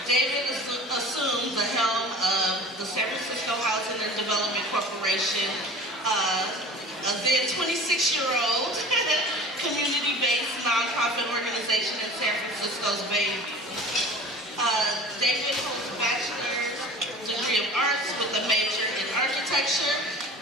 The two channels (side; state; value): both; normal; correlation 0.40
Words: David assumed the helm of the San Francisco Housing and Development Corporation, a then 26-year-old community-based nonprofit organization in San Francisco's Bay. David holds a bachelor's degree of arts with a major in architecture,